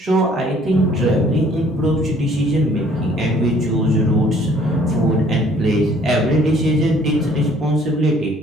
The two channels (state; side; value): normal; both; correlation 0.58